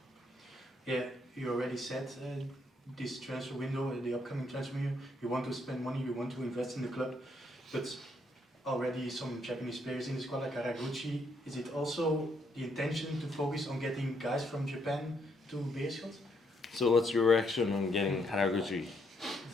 Yeah, you already said this transfer window, the upcoming transfer window, you want to spend money, you want to invest in the club, but already some Japanese players in the squad like Haraguchi. Is it also the intention to focus on getting guys from Japan to Beerschot? So what's your reaction on getting Haraguchi?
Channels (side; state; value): both; normal; correlation 0.73